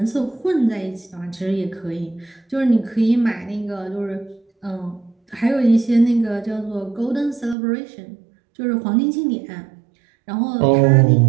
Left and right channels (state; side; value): drops out; left; at 7.6 s